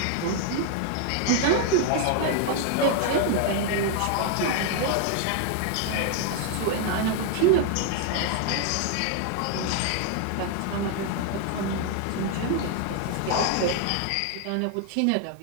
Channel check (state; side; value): different; both; correlation 0.00